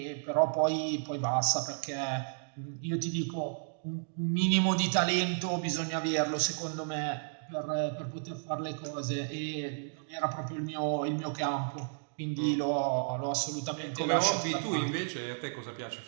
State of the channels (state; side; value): silent; left; digital silence